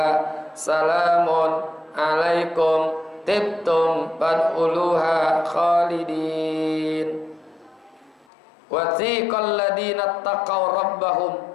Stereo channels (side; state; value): right; drops out; at 8.2 s